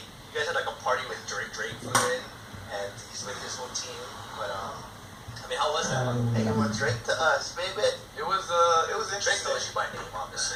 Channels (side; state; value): both; identical; correlation 1.00